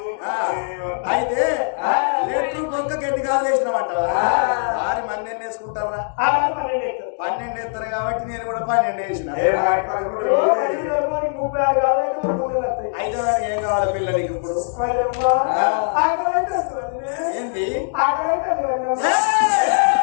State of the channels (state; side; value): silent; right; digital silence